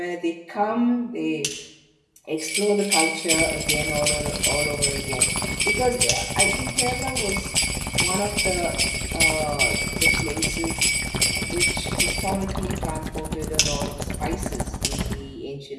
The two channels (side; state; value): both; identical; correlation 1.00